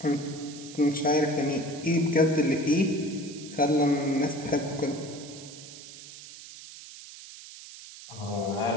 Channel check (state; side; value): noise; right; hiss, 15 dB below the sound